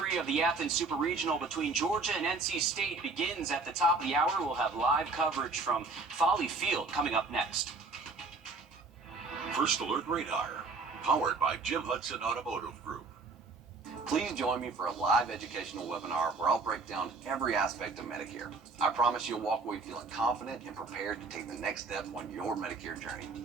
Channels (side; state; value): left; quieter; 3.8 dB